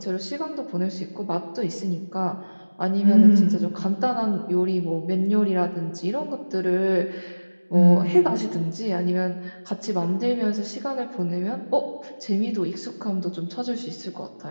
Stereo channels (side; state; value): both; inverted; correlation -1.00